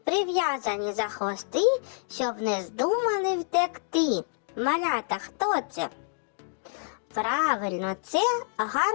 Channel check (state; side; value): silent; right; 60 dB below the other